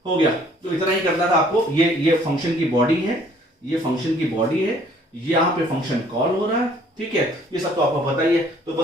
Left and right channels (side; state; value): both; normal; correlation 0.59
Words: हो गया। तो इतना ही करना था आपको। ये फंक्शन की बॉडी है, ये फंक्शन की बॉडी है, यहां पे फंक्शन कॉल हो रहा है। ठीक है, ये सब तो आपको पता ही है। तो